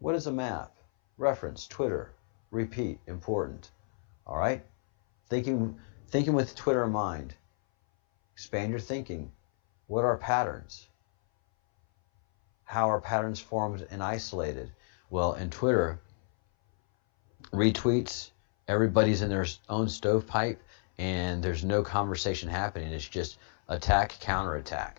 is a map? reference, Twitter, repeat, important. All right? Thinking with Twitter in mind. Expand your thinking. What are patterns? How are patterns formed and isolated? Well, in Twitter, retweets, everybody's in their own stovepipe, and there's no conversation happening. It's just attack,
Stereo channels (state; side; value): silent; right; 57 dB below the other